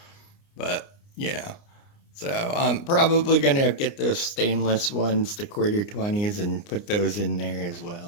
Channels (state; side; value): late; right; 29 ms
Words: But, so I'm probably going to get those stainless ones, the quarter 20s, and put those in there as